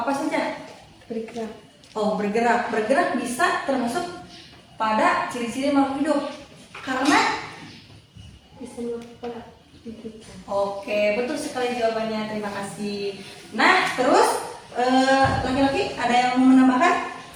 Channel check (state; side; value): identical; both; correlation 1.00